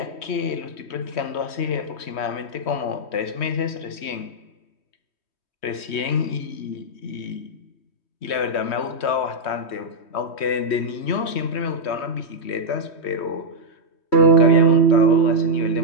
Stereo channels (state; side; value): late; right; 3.1 ms